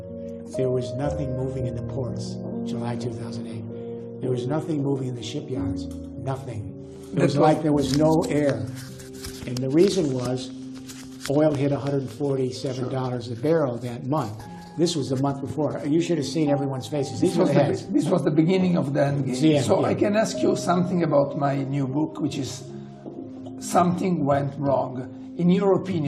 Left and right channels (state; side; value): identical; both; correlation 1.00